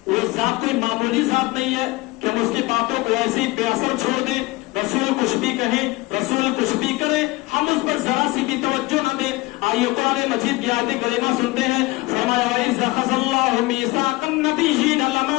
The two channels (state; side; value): quieter; right; 21.3 dB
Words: وہ ذات کوئی معمولی ذات نہیں ہے کہ ہم اس کی باتوں کو ایسے ہی بے اثر چھوڑ دیں. رسول کچھ بھی کہیں، رسول کچھ بھی کرے، ہم اس پر ذرا سی بھی توجہ نہ دیں. آئیے قرآن مجید کی آیت کریمہ سنتے ہیں. فرمایا وَإِذْ أَخَذَ اللَّهُ مِيثَاقَ النَّبِيِّينَ